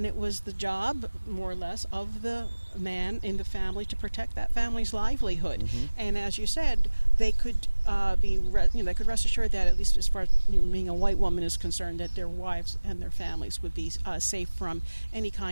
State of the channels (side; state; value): both; inverted; correlation -1.00